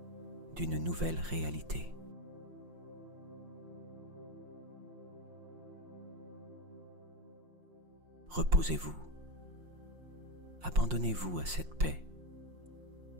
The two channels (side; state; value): left; late; 5.6 ms